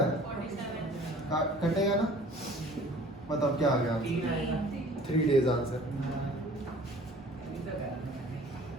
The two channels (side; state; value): both; normal; correlation 0.49